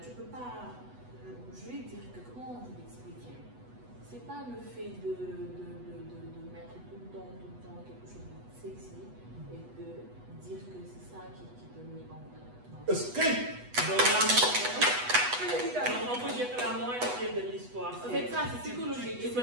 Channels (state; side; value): late; left; 8.1 ms